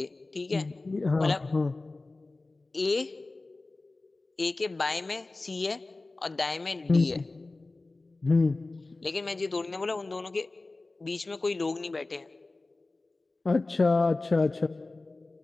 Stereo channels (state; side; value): quieter; right; 3.2 dB